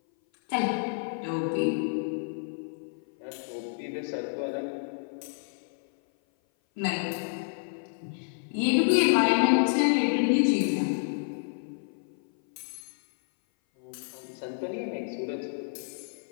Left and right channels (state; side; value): silent; right; 56 dB below the other